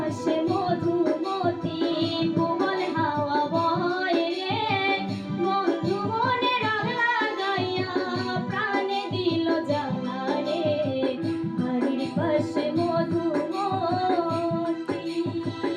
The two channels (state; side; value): identical; both; correlation 1.00